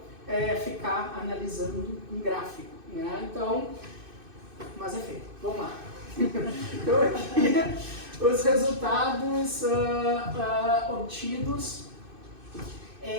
ficar analisando um gráfico, né? Então, mas enfim, vamos lá. Então aqui os resultados obtidos.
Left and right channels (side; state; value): left; late; 2.6 ms